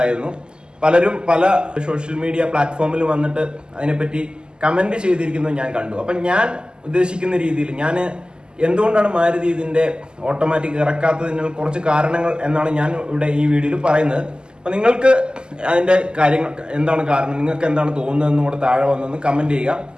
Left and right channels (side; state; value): left; late; 0.047 ms